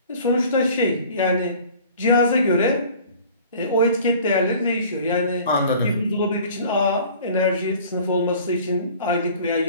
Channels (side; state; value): both; inverted; correlation -0.47